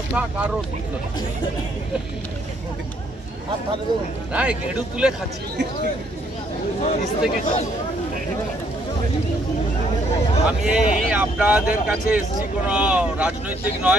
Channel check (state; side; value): normal; both; correlation 0.68